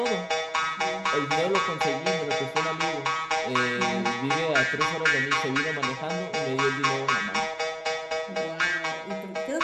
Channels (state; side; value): identical; both; correlation 1.00